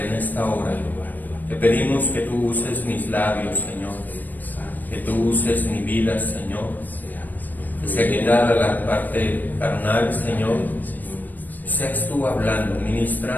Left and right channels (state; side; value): late; right; 0.087 ms